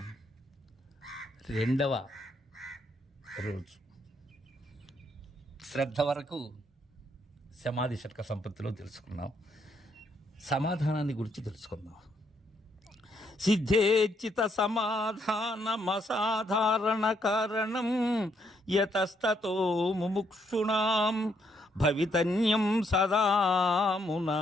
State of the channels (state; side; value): normal; both; correlation 0.74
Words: రెండవ రోజు శ్రద్ధ వరకు సమాధి షట్క సంపత్తిలో తెలుసుకున్నాం. సమాధానాన్ని గురించి తెలుసుకుందాం. సిద్ధేచిత సమాధానమసాధారణ కారణం యతస్తతో ముముక్షుణాం భవితన్యం సదామునా.